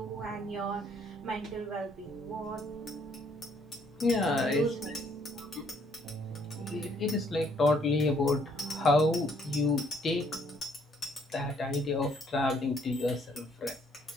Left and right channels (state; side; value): normal; both; correlation 0.65